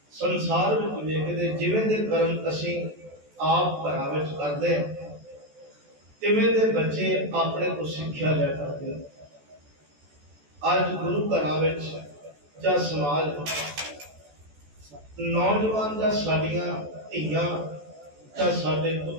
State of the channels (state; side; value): late; left; 14 ms